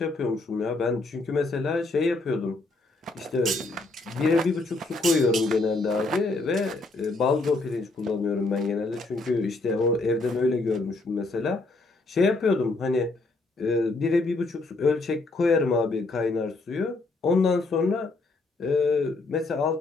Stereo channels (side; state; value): right; quieter; 3.2 dB